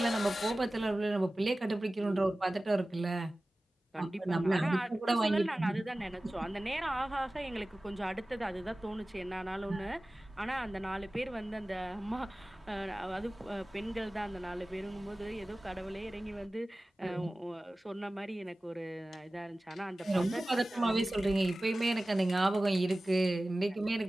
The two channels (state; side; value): normal; both; correlation 0.97